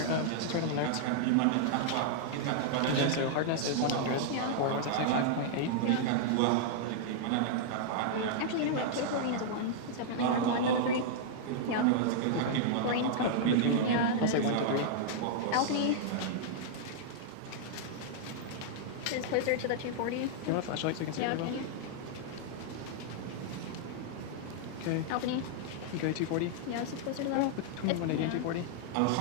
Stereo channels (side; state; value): both; different; correlation -0.01